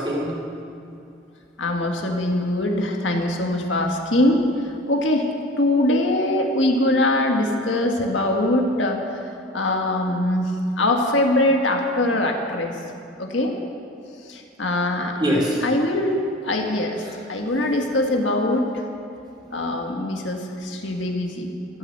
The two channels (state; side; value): normal; both; correlation 0.38